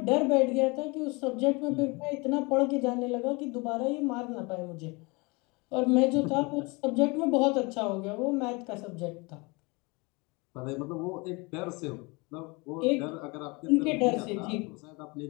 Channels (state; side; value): quieter; right; 27.3 dB